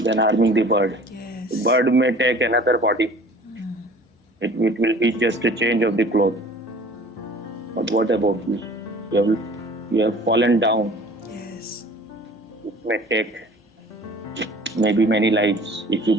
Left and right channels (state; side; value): normal; both; correlation 0.47